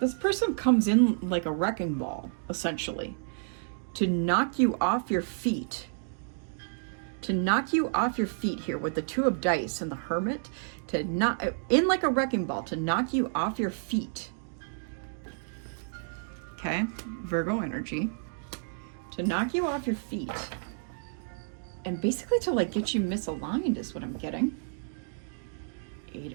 person comes in like a wrecking ball, essentially, to knock you off your feet. To knock you off your feet here with the 2 of dice and the Hermit, to knock in like a wrecking ball, to knock you off your feet. Okay, Virgo energy. To knock you off your feet. And basically to like get you misaligned is what I'm getting.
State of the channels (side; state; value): left; silent; digital silence